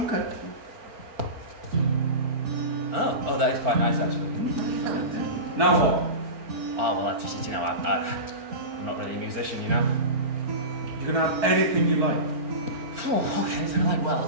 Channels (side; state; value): left; late; 4.4 ms